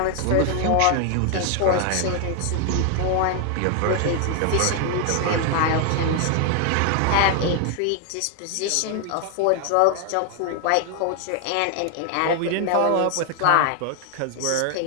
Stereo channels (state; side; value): different; both; correlation 0.00